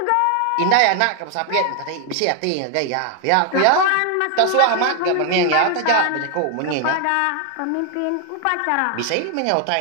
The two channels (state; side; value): different; both; correlation 0.00